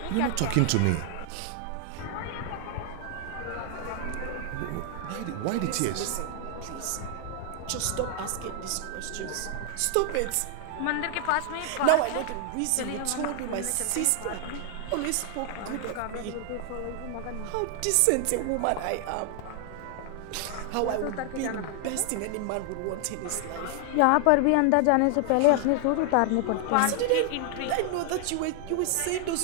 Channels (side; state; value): both; different; correlation 0.00